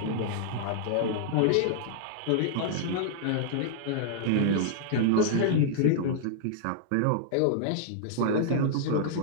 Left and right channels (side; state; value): both; different; correlation -0.01